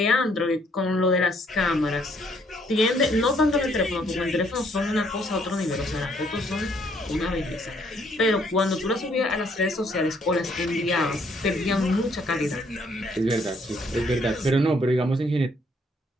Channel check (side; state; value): both; normal; correlation 0.67